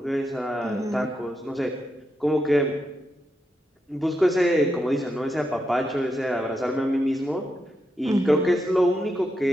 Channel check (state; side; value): normal; both; correlation 0.84